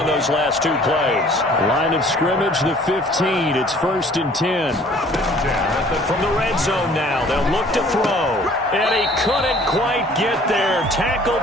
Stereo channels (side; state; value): both; normal; correlation 0.53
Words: those last 2 plays. Line of scrimmage, the 15. It's 1st and 10. From the red zone now, they'll look to throw. And he couldn't quite get there.